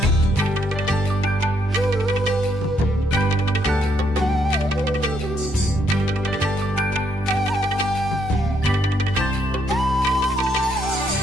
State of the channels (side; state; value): both; normal; correlation 0.74